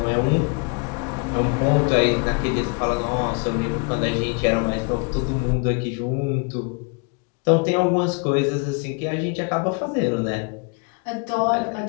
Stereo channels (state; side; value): quieter; right; 34.3 dB